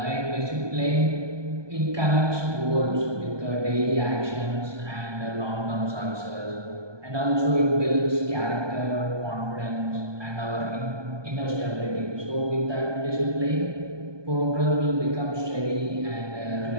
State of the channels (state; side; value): late; left; 1.2 ms